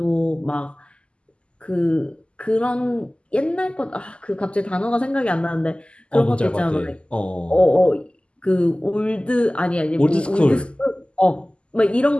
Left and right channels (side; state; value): right; late; 0.052 ms